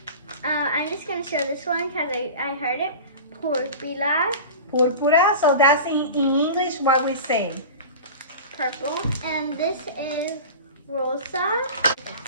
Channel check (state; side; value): inverted; both; correlation -0.33